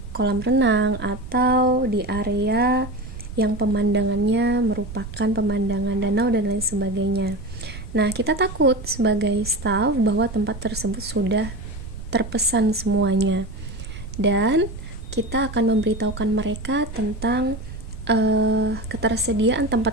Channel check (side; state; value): right; noise; rumble, 11 dB below the sound